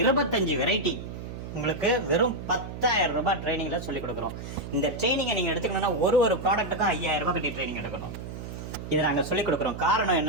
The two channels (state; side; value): noise; right; hum, 9 dB below the sound